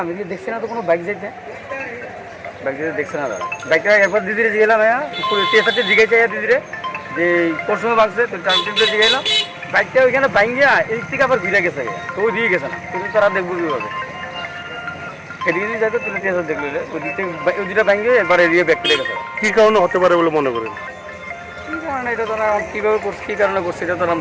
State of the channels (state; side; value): identical; both; correlation 1.00